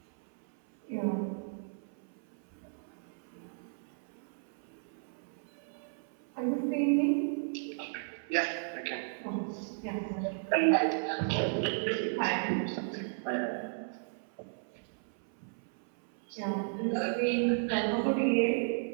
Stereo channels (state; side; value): silent; left; 55 dB below the other